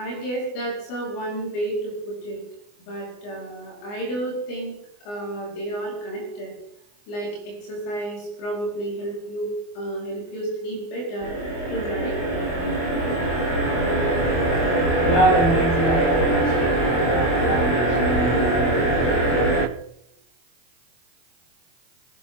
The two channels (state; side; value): late; right; 24 ms